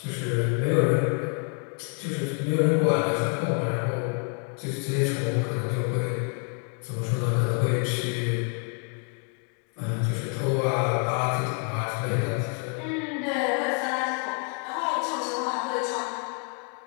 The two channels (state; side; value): quieter; right; 39.9 dB